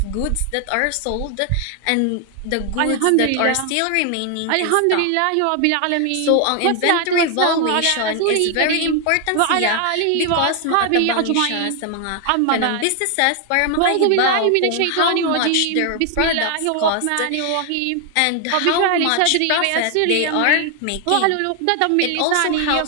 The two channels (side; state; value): both; different; correlation 0.00